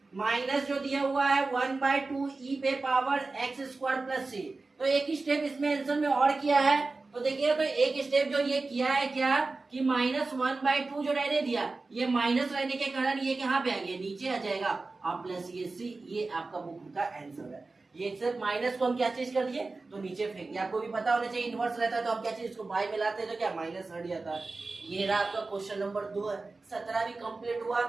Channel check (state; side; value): quieter; left; 3.6 dB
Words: माइनस जो दिया हुआ है 1/2 e पे पावर x² प्लस c। तो एक स्टेप इसमें आंसर में और किया है, तो देखिए तो एक स्टेप जो ये किया है क्या कि -1/2 जो रहने दिया, ये माइनस रहने के कारण ये कहाँ पे आ गया, नीचे आ जाएगा, और प्लस ये c, ये आपका बुक का आंसर है। ये सिर्फ माइनस को हम क्या चीज कर दिए, तो नीचे फेंक दिया। आपको भी पता होना चाहिए इनवर्स रहता है तो हम क्या चीज इसको बाई में लाते हैं तो क्या माइनस हट जाता है। ये रहा आपका क्वेश्चन नंबर 2 है, 17 भी कंप्लीट हुआ।